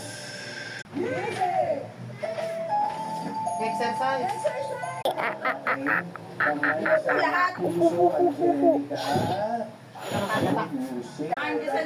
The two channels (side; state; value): both; identical; correlation 1.00